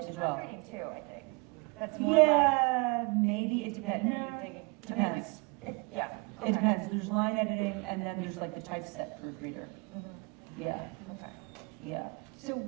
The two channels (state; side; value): quieter; left; 29.9 dB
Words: as well. proofreading too, I think. That's more Yeah, maybe, it depends. like, No, depends. yeah. It depends, there's line editing, and then there's like the typeset proofreader. Mhm. Yeah, Okay. yeah, So,